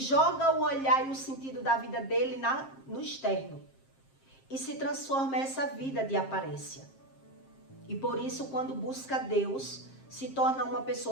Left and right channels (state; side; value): late; right; 7.5 ms